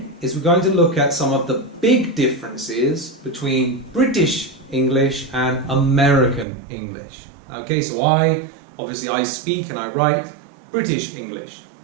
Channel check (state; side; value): drops out; left; at 6.5 s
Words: is we're going to look at some of the big differences between British English and American English. Okay, so obviously I speak and I write British English.